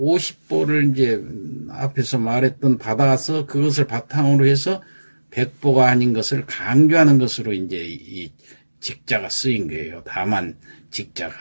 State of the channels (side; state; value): both; inverted; correlation -1.00